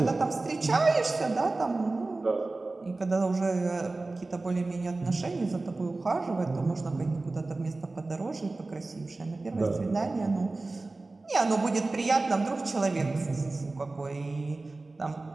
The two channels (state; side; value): quieter; left; 3.3 dB